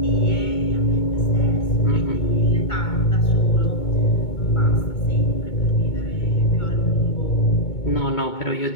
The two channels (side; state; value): right; late; 2.2 ms